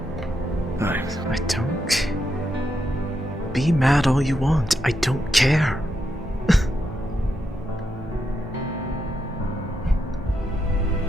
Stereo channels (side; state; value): both; normal; correlation 0.82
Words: I don't... Be mad all you want. I don't care.